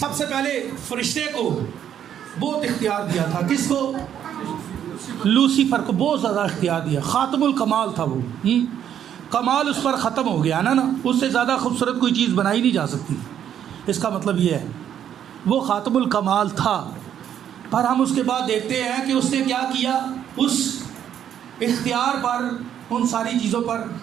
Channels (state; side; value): quieter; left; 9.7 dB